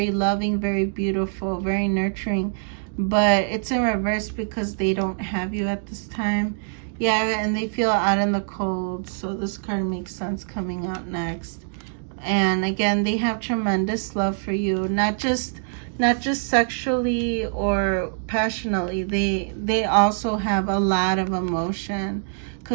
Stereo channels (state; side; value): silent; left; digital silence